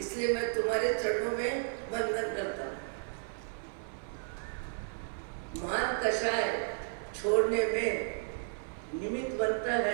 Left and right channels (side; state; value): left; silent; 55 dB below the other